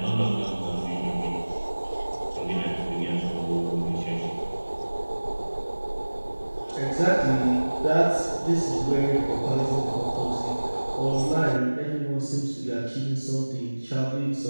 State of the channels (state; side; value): inverted; both; correlation -1.00